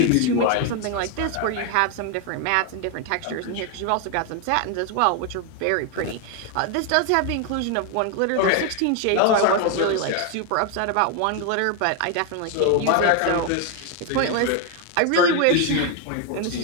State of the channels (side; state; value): both; different; correlation 0.01